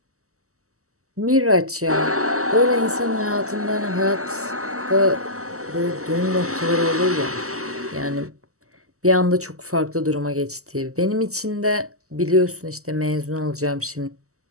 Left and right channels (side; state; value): left; late; 0.65 ms